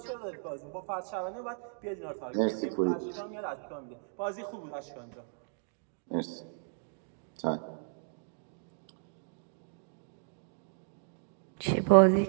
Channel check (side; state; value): left; silent; digital silence